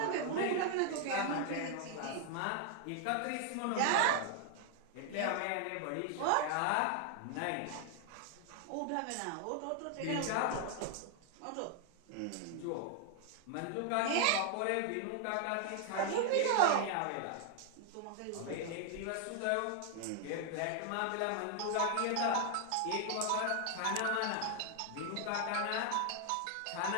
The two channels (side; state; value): both; different; correlation 0.00